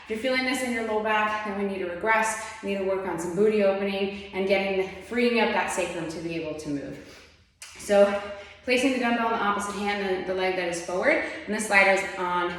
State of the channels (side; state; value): both; identical; correlation 1.00